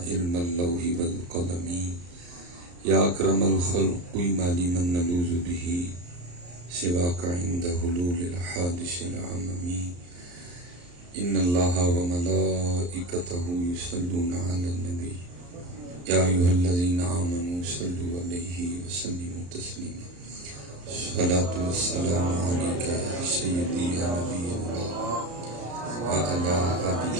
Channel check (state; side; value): late; left; 34 ms